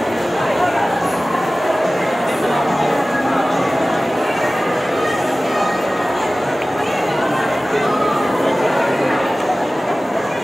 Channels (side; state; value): both; normal; correlation 0.97